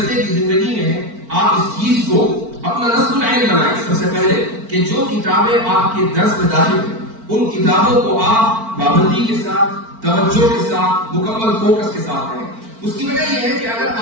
کی زندگی میں ہیں، آپ اس چیز کو اپنا نصب العین بنائیں۔ سب سے پہلے کہ جو کتابیں آپ کے درس میں داخل ہیں ان کتابوں کو آپ پابندی کے ساتھ، توجہ کے ساتھ، مکمل فوکس کے ساتھ پڑھیں۔ اس کی وجہ یہ ہے کہ اگر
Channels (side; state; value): left; late; 4.4 ms